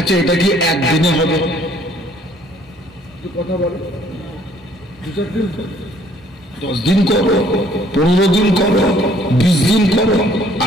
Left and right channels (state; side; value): normal; both; correlation 0.61